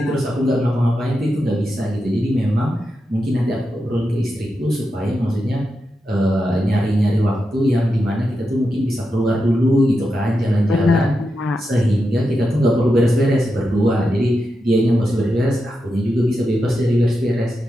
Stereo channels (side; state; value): both; normal; correlation 0.88